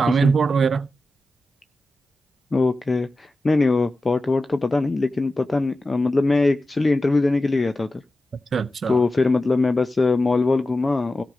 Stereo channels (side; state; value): both; normal; correlation 0.92